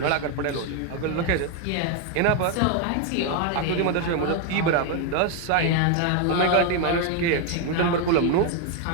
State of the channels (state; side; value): different; both; correlation 0.01